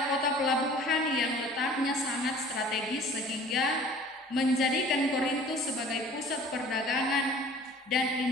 kota pelabuhan yang letaknya sangat strategis sehingga menjadikan Korintus sebagai pusat perdagangan dan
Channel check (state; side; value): normal; both; correlation 0.48